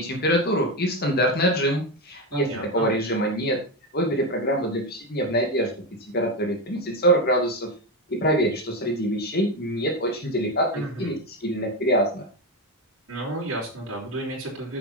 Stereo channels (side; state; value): both; normal; correlation 0.13